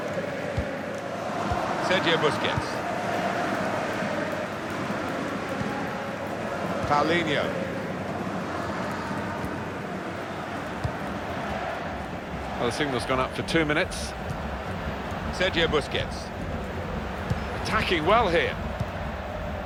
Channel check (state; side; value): identical; both; correlation 1.00